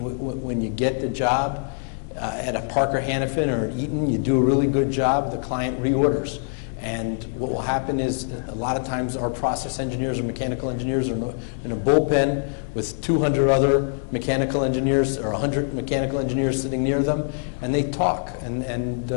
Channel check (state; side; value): silent; right; digital silence